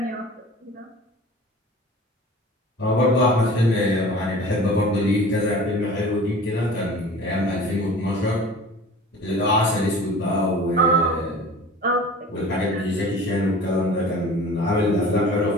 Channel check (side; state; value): both; normal; correlation 0.42